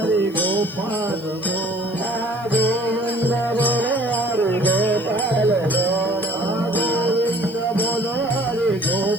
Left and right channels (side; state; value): left; noise; hiss, 24 dB below the sound